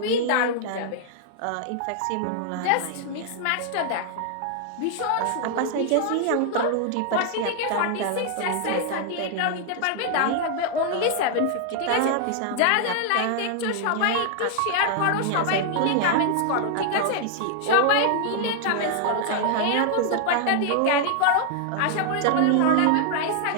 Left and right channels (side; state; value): both; different; correlation 0.00